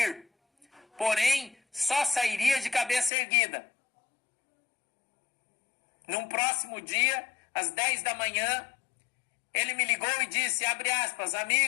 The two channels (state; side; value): drops out; right; at 3.1 s